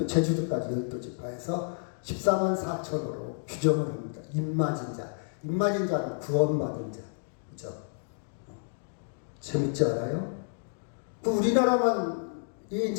제주도까지 12지파에서 14만 4천으로 규정을 합니다. 임마진 자. 임마진 자는 구원받은 자. 그죠? 재밌지 않아요? 그 우리나라만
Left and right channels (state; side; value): silent; right; digital silence